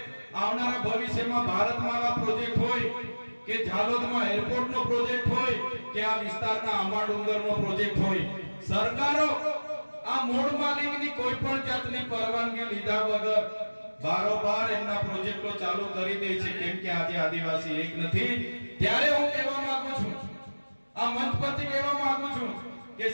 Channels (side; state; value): both; inverted; correlation -1.00